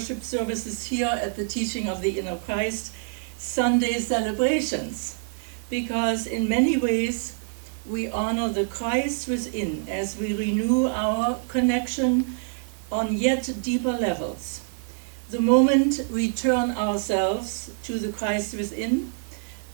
services here at the teaching of the inner Christ Sunday celebrations, because in many ways we honor the Christ within as we renew our connection on yet deeper levels. The moment we turn ourselves to the Christ within,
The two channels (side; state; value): left; silent; digital silence